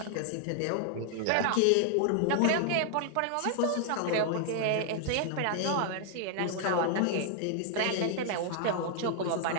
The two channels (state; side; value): different; both; correlation 0.00